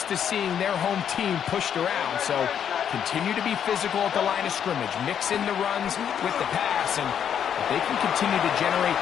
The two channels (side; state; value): right; quieter; 8.7 dB